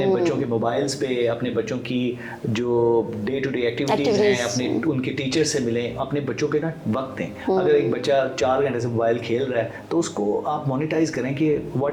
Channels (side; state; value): both; identical; correlation 1.00